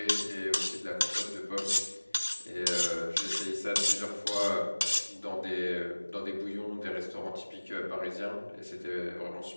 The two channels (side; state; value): both; inverted; correlation -1.00